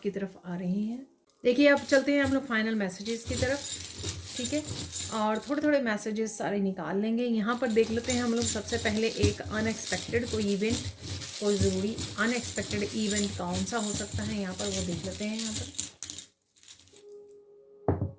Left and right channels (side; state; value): both; identical; correlation 1.00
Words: तरफ आ रही हैं। देखिए अब चलते हैं हम लोग फाइनल मैसेजेस की तरफ, ठीक है, और थोड़े थोड़े मैसेजेस सारे निकाल लेंगे। यहाँ पर देख लेते हैं हम लोग सबसे पहले एक अनएक्सपेक्टेड कोई इवेंट, कोई ज़रूरी अनएक्सपेक्टेड इवेंट कौन सा हो सकता है यहाँ पर, वो देख लेते हैं यहाँ पर।